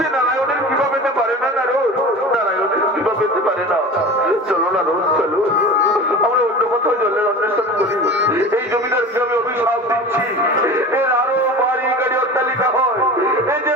নারায়ণের কৃপা পেতে পারে না। নারায়ণের কৃপা পেতে পারে না। চলো না রোজ চলো, আমরা অন্য কোথাও জলের অন্বেষণ করি। এই জমিদারকে আমি অভিশাপ দিচ্ছি, এর আরো বাড়ি গাড়ি অট্টালিকা হয়, এই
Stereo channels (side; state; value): both; normal; correlation 0.34